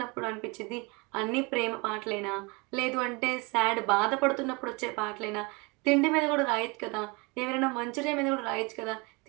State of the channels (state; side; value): quieter; left; 28.4 dB